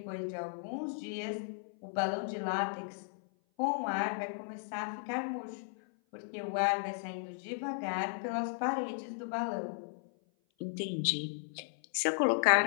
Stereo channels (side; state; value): right; silent; 54 dB below the other